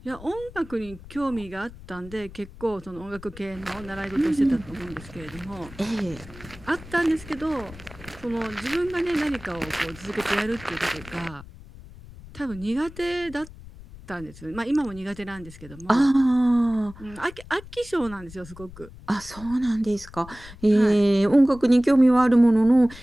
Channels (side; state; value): left; noise; rumble, 18 dB below the sound